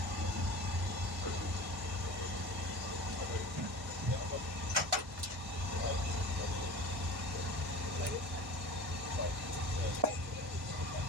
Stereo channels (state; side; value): normal; both; correlation 0.37